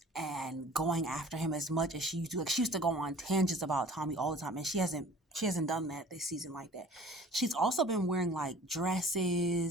and going after him as much as she used to. Like she used to go on tangents about Tommy all the time, and she hasn't done that this season like that. She's also been wearing like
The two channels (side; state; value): both; normal; correlation 0.48